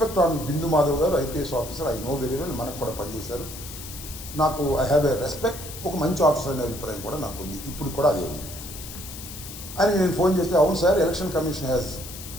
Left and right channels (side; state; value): left; noise; hiss, 12 dB below the sound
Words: on Bindu Madhav garu, IPS officer, I know very well, మనకు కూడా పనిచేశారు. నాకు ఐ హ్యావ్ ఎ రెస్పెక్ట్, ఒక మంచి ఆఫీసర్ అనే అభిప్రాయం కూడా నాకు ఉంది, ఇప్పుడు కూడా అదే ఉంది అని నేను ఫోన్ చేస్తే, అవును sir, election commission has